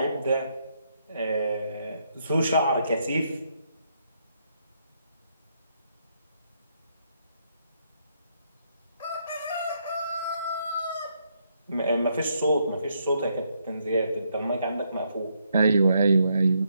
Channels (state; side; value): inverted; both; correlation -0.76